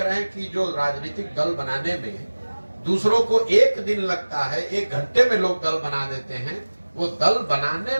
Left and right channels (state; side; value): inverted; both; correlation -1.00